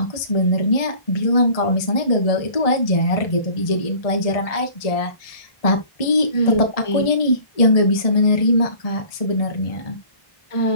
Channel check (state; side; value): late; right; 1.6 ms